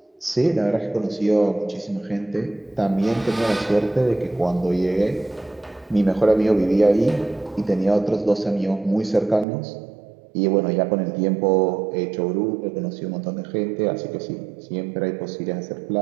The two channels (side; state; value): left; drops out; at 9.5 s